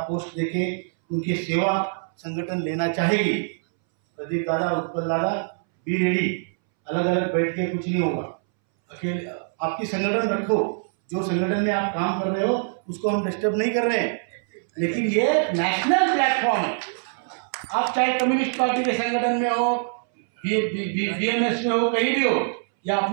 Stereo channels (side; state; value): left; silent; 63 dB below the other